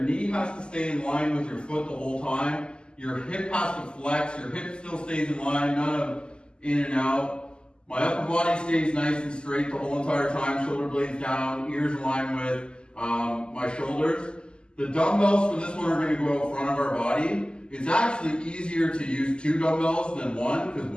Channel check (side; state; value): right; late; 0.050 ms